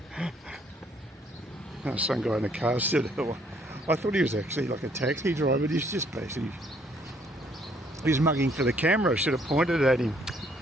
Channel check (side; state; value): both; normal; correlation 0.65